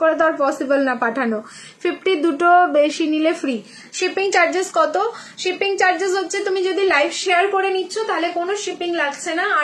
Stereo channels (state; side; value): identical; both; correlation 1.00